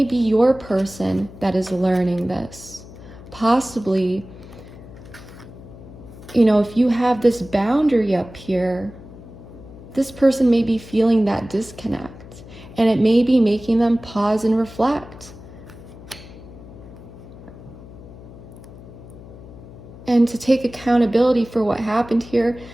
be your person that is learning this. Possibly, you know, if you have this boundary up here, this person may be feeling that disconnect. And it may be making them pause and reflect. And to take accountability for what happened here,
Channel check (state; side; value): noise; left; hum, 17 dB below the sound